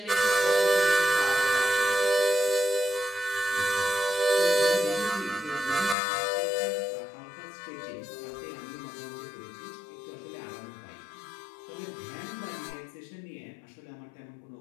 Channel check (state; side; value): drops out; right; at 6.0 s